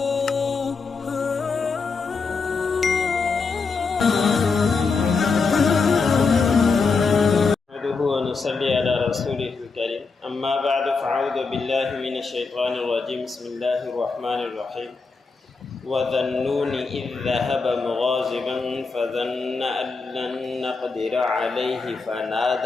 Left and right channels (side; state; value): right; quieter; 4.5 dB